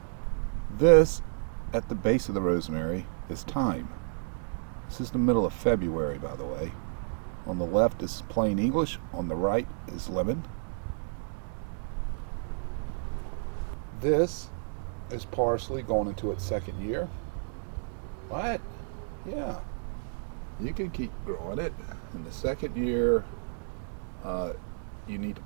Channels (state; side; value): silent; left; digital silence